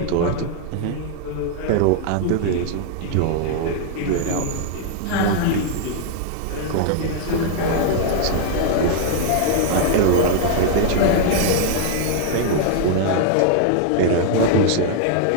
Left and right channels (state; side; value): different; both; correlation -0.01